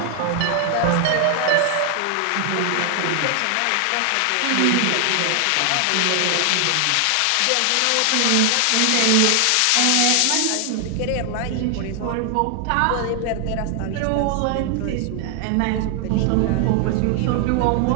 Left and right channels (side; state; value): both; different; correlation 0.00